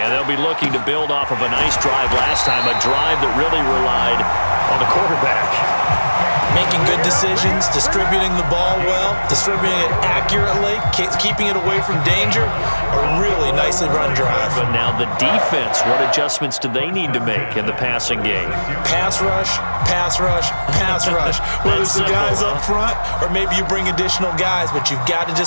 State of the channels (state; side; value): inverted; both; correlation -1.00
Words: they'll be looking to build off of a nice drive last time, a drive that really relied on the quarterback. Making good decisions, distributing the ball well, distributing it accurately, keeping it away from danger. A really nicely run drive. But now the defense, what adjustments do they need to make in the passing game? Pass rush, pass rush, pass rush. Whether it's the guys up front or maybe you bring additional guys, but you've got to